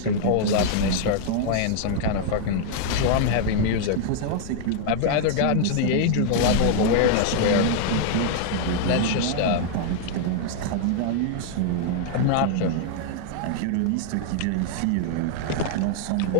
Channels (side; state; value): both; different; correlation 0.00